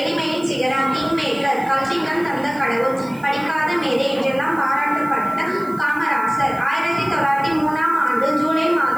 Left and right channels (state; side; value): noise; right; hiss, 24 dB below the sound